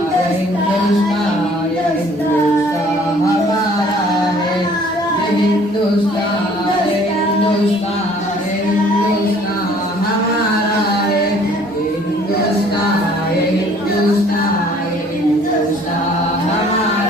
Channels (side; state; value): both; normal; correlation 0.56